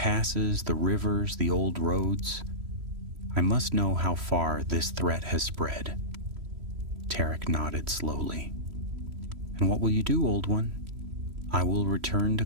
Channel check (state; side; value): late; left; 3.1 ms